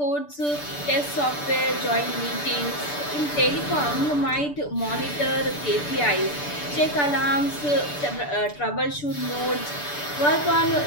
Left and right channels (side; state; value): right; late; 6.8 ms